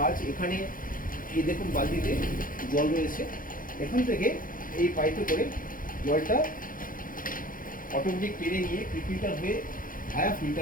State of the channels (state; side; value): late; right; 0.40 ms